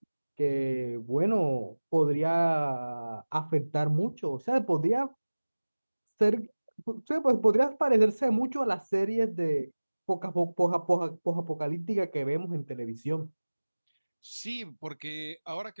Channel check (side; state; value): both; inverted; correlation -1.00